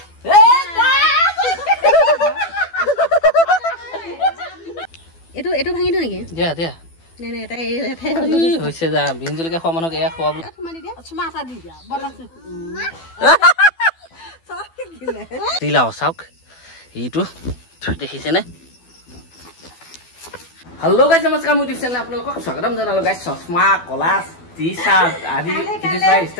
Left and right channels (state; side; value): late; right; 12 ms